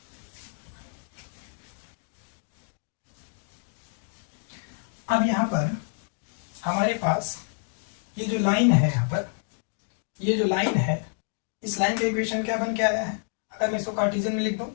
अब यहाँ पर हमारे पास ये जो लाइन है, यहाँ पर ये जो लाइन है, इस लाइन का इक्वेशन क्या बन के आया है, अगर मैं इसको कार्टेशियन में लिख दूं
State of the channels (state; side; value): silent; right; 59 dB below the other